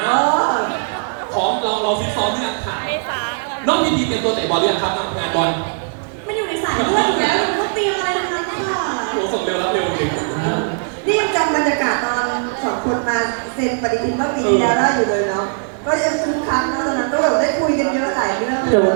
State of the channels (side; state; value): left; silent; digital silence